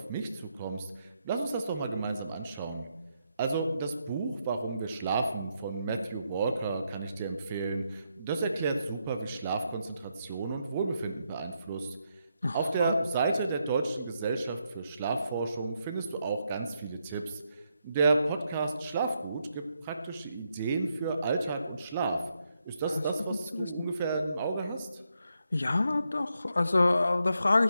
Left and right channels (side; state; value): both; inverted; correlation -0.80